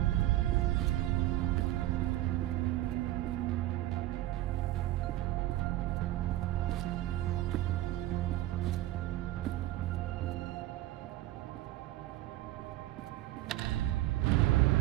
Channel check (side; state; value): left; quieter; 15.4 dB